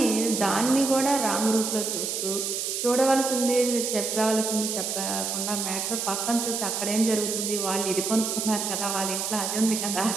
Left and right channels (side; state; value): right; noise; hiss, 2 dB below the sound